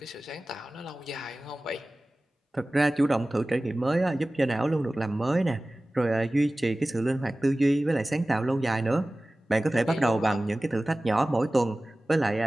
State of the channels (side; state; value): both; normal; correlation 0.97